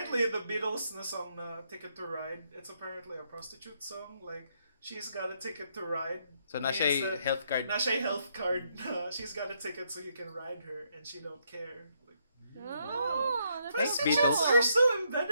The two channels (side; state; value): both; inverted; correlation -0.75